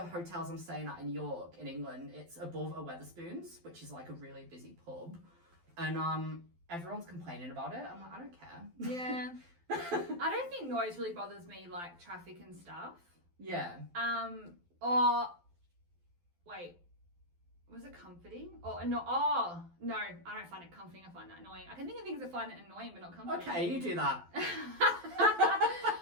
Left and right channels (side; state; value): left; late; 12 ms